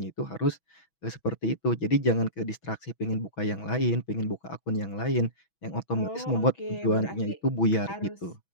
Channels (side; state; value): right; late; 6.1 ms